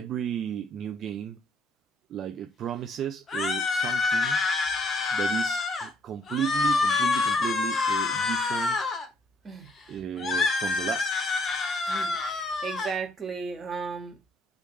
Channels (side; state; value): both; normal; correlation 0.67